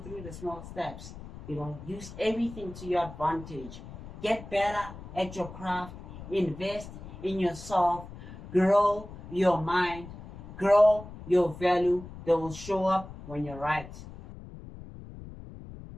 through the small steps. Use everything to your advantage. Get better at your craft. Invest in yourself. Grow your mind. Grow your value. They will show up when you're right.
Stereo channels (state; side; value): noise; left; rumble, 14 dB below the sound